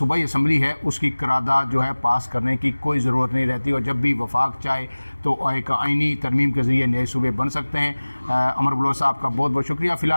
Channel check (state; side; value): inverted; both; correlation -1.00